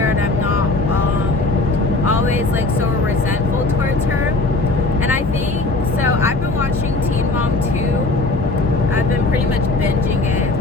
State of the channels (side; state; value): right; quieter; 3.2 dB